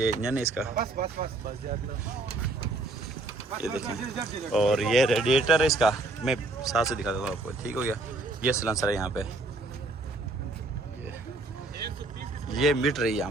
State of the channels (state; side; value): quieter; left; 3.0 dB